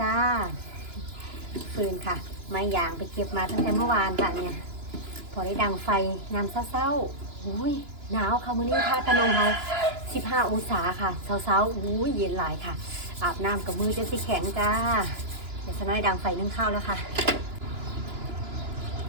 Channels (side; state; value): left; late; 2.9 ms